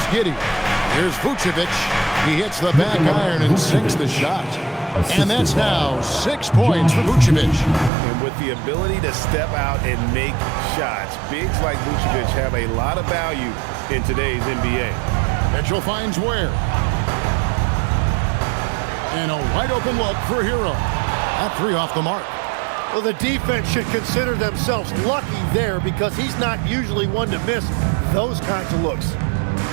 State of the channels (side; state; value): left; drops out; at 7.9 s